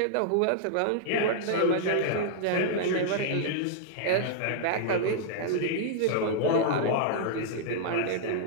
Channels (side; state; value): both; different; correlation -0.01